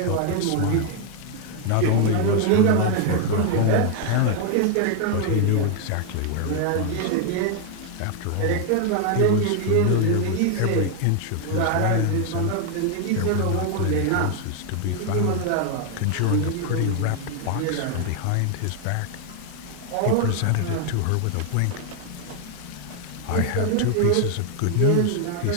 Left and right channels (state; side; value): different; both; correlation 0.00